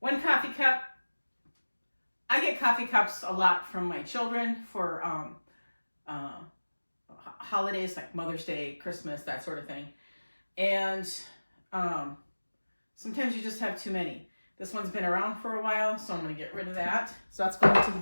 One coffee cup. I get coffee cups a lot from my children for holidays like Mother's Day, Christmas, that sort of thing. And sometimes you just have too many. This one's been around for a while, so I'm going to get rid of that. So that's going to the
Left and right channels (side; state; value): both; inverted; correlation -1.00